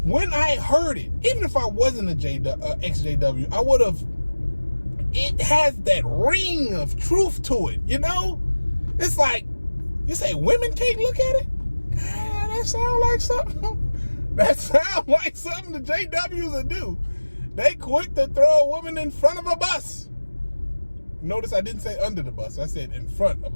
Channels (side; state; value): both; inverted; correlation -1.00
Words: when I heard it, even if I wasn't a ExJW, I would have, it has that ring of truth to it, you know? It's like, you say women can't look at it? God, that sound like something. That sound like something the JWs will do. They quick to throw a woman in front of a bus. Notice I didn't say under the bus. I said in front of